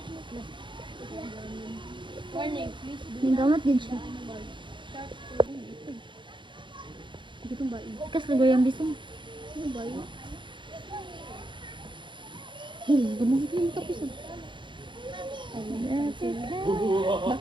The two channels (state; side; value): late; left; 0.23 ms